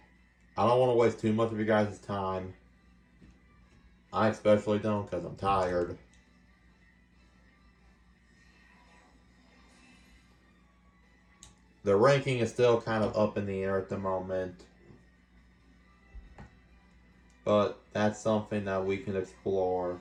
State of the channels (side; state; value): both; identical; correlation 1.00